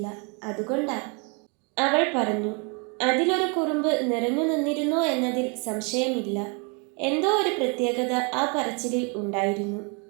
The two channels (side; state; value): left; quieter; 34.2 dB